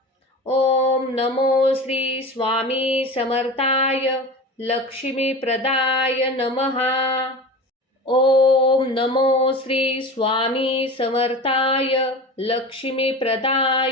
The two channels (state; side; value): normal; both; correlation 0.32